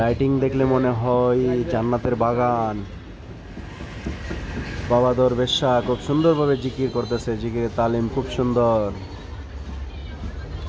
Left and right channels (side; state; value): both; identical; correlation 1.00